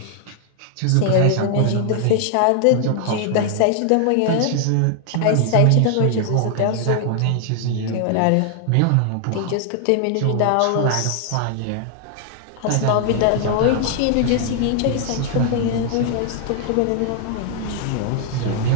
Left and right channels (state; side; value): different; both; correlation 0.00